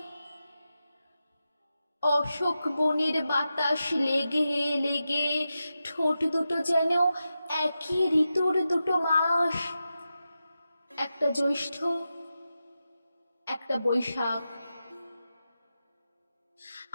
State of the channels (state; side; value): inverted; both; correlation -0.90